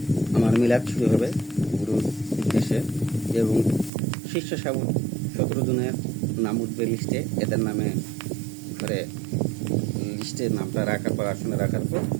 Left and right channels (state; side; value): drops out; left; at 3.9 s